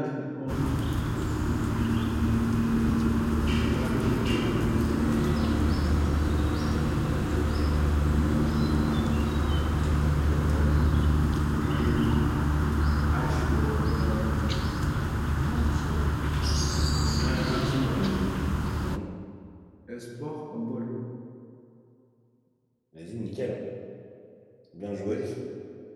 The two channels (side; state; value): both; identical; correlation 1.00